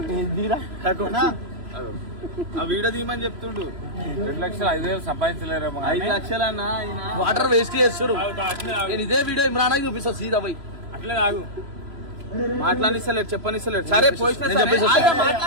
ఆ వీడియో తీయమని చెప్తుండు. 2 లక్షలు 5,000 సంపాదించలేరేమో. 5 లక్షలు అన్నా వాటర్ వేస్ట్ చేస్తారు. నేను ఇదే వీడియో ఇమ్రానాకి చూపిస్తా సీదా పోయి. అట్లే కాదు మాట్లాడిస్తలేడు చెప్పనిస్తలేడు. సరే పోయిన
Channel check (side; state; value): left; late; 3.0 ms